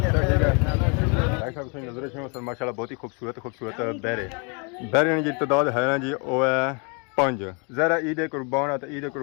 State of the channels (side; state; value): right; quieter; 34.4 dB